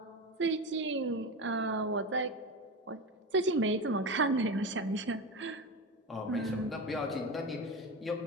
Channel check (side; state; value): both; normal; correlation 0.22